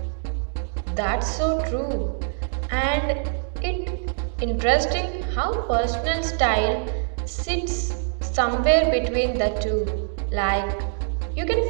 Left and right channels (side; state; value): left; silent; digital silence